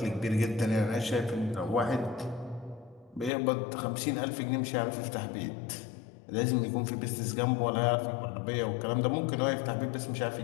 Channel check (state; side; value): drops out; right; at 3.3 s